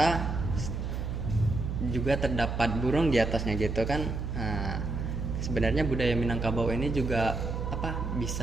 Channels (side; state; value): right; noise; hum, 3 dB below the sound